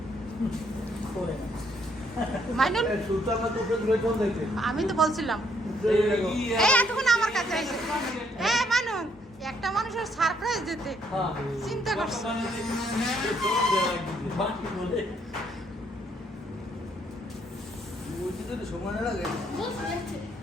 মাইনুল আমি তো বলছিলাম এই এতক্ষণ আমার কাছে এসে এই মাইনুল একটা মানুষের সারপ্রাইজ দিতে চিন্তা করছে।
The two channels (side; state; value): both; normal; correlation 0.69